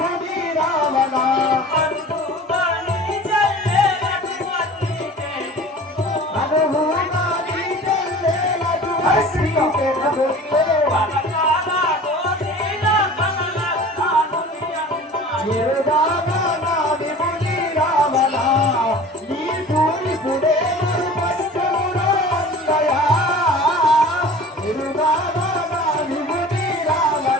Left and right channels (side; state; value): both; normal; correlation 0.41